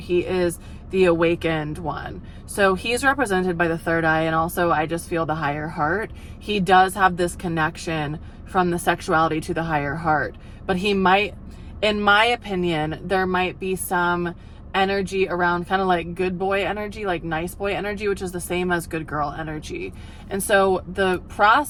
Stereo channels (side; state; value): both; identical; correlation 1.00